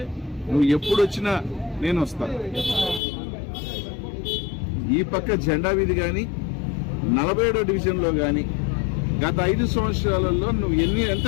నువ్వు ఎప్పుడు వచ్చినా నేను వస్తాను. ఈ పక్క జెండా వీధి కానీ 47వ డివిజన్లో కానీ గత 5 సంవత్సరాలలో నువ్వు ఎంత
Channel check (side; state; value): right; drops out; at 3.0 s